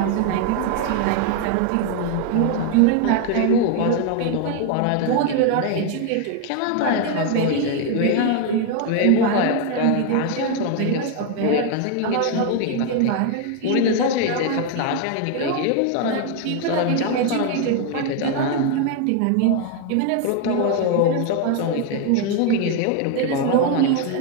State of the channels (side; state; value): both; different; correlation 0.01